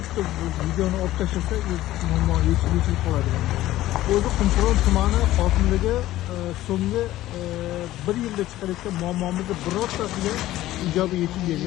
bu videoni olib tashlasak, muammo yechilib qoladi. O'zi Qumqo'rg'on tumani hokimligi so'nggi 1 yilda chiqarayotgan muammomizni birortasiga ijobiy yechim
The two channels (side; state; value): right; quieter; 15.2 dB